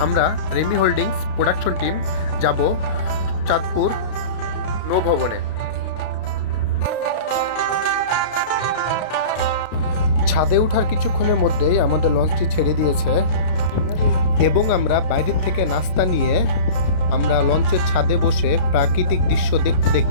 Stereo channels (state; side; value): late; right; 32 ms